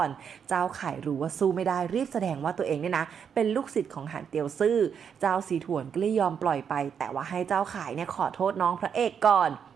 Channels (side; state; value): left; quieter; 7.4 dB